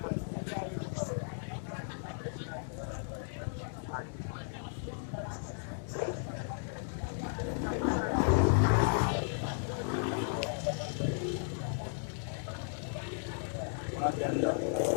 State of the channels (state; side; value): silent; right; digital silence